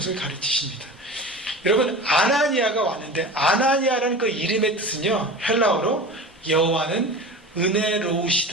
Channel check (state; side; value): normal; both; correlation 0.33